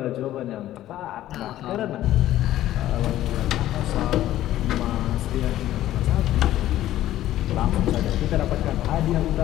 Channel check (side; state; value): right; quieter; 13.7 dB